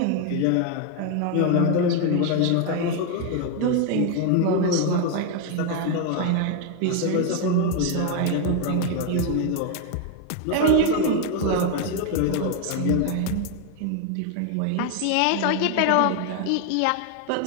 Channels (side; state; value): both; different; correlation 0.01